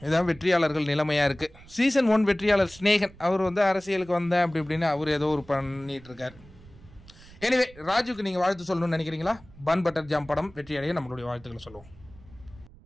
இதான் வெற்றியாளர்கள் நிலைமையாக இருக்குது. சீசன் 1 வெற்றியாளர் ஸ்னேகன், அவர் வந்து அரசியலுக்கு வந்தேன் அப்படி இப்படின்னு அவர் ஏதோ ஒரு பண்ணிட்டு இருக்கார். எனிவே ராஜுக்கு நீங்கள் வாழ்த்து சொல்லணும்னு நினைக்கிறீங்களா? பன் பட்டர் ஜாம் படம் வெற்றியடைய நம்மளுடைய வாழ்த்துக்களை சொல்லுவோம்.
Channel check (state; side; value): noise; right; rumble, 22 dB below the sound